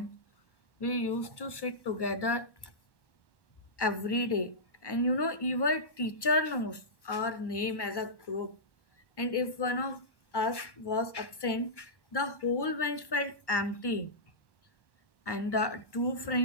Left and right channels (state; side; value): late; right; 1.1 ms